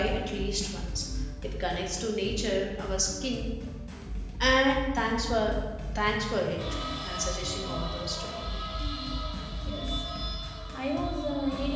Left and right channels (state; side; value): identical; both; correlation 1.00